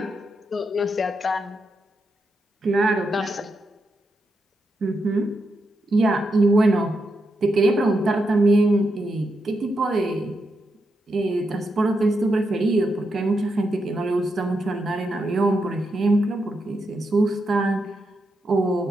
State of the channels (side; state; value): both; normal; correlation 0.84